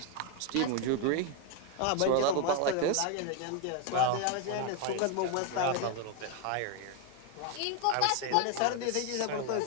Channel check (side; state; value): both; different; correlation 0.01